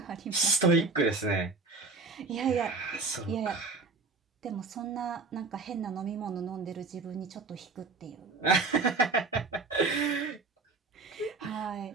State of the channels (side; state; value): left; quieter; 4.1 dB